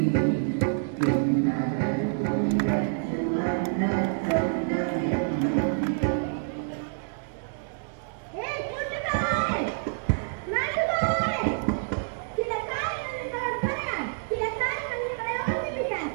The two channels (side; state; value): left; silent; digital silence